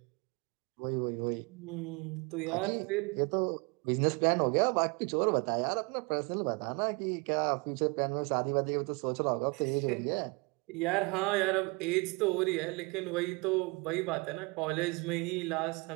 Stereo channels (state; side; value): quieter; left; 29.2 dB